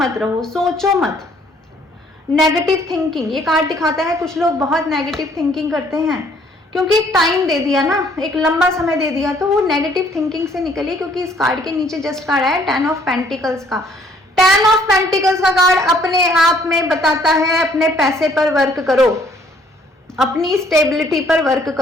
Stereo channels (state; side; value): normal; both; correlation 0.62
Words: रहो, सोचो मत। नेगेटिव थिंकिंग, ये कार्ड दिखाता है कुछ लोग बहुत नेगेटिव थिंकिंग करते हैं, क्योंकि एक टाइम दे दिया ना, एक लंबा समय दे दिया, तो वो नेगेटिव थिंकिंग से निकलिए। क्योंकि इस कार्ड के नीचे जस्ट कार्ड है 10 ऑफ पेंटिकल्स का। 10 ऑफ पेंटिकल्स का कार्ड अपने आप में बताता है अपने पैसे पर वर्क करो, अपनी स्टेबिलिटी पर वर्क